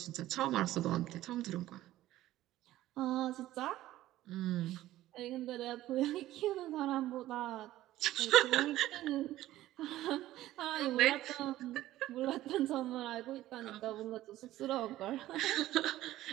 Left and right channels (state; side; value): quieter; left; 14.9 dB